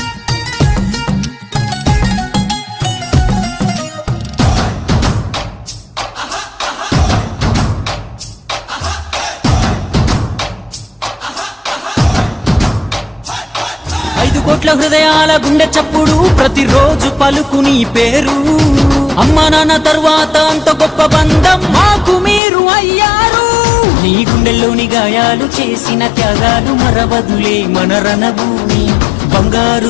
5 కోట్ల హృదయాల గుండె చప్పుడు ప్రతిరోజు పలుకు నీ పేరు అమ్మ నాన్న తర్వాత అంత గొప్ప బంధం మాకు మీరు అయ్యారు నీ గుండెల్లోని గాయాలు చేసిన త్యాగాలు మరవదులే మన రణభూమి బంగారు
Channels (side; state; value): right; drops out; at 22.4 s